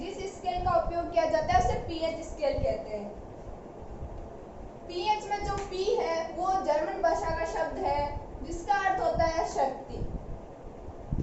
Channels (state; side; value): identical; both; correlation 1.00